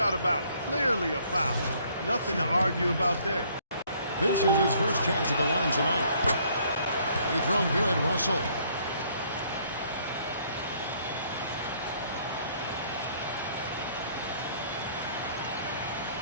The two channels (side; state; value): both; inverted; correlation -0.63